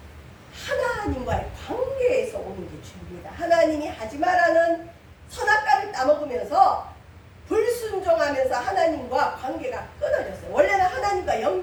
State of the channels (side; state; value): both; identical; correlation 1.00